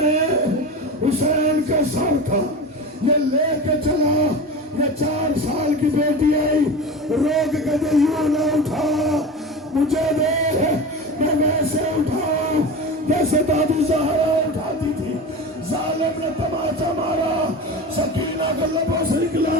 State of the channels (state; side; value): normal; both; correlation 0.29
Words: हुसैन का सर था, ये लेके चला। ये 4 साल की बेटी आई, रोक के दे यूं ना उठा, मुझे दे, मैं वैसे उठाऊं जैसे दादी ज़हरा उठाती थी। जालिम ने तमाचा मारा, सकीना के लबों से निकला,